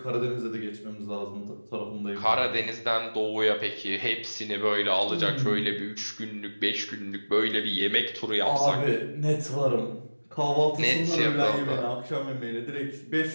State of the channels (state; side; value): inverted; both; correlation -1.00